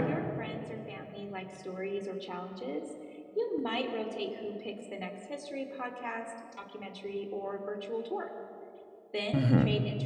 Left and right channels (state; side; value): identical; both; correlation 1.00